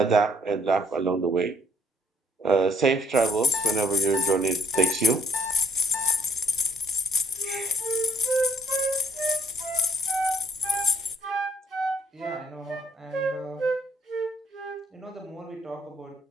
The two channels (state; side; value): normal; both; correlation 0.64